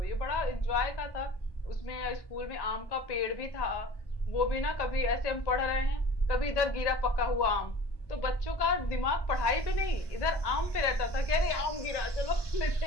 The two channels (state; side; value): late; right; 1.1 ms